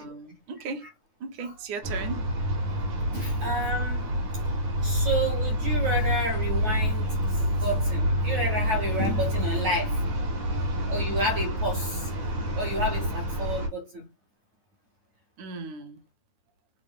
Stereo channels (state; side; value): late; left; 9.3 ms